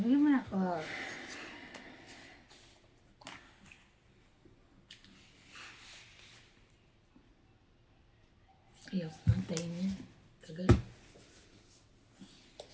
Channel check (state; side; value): identical; both; correlation 1.00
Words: mo na ako. Ayaw, antayin niya. Tagal.